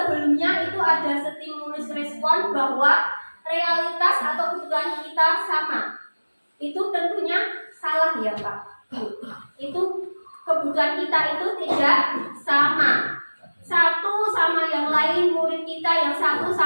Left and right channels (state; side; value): inverted; both; correlation -1.00